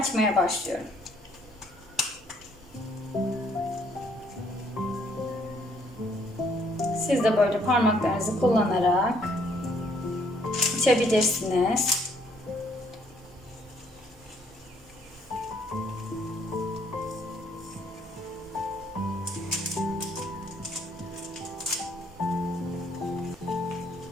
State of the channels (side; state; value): both; normal; correlation 0.66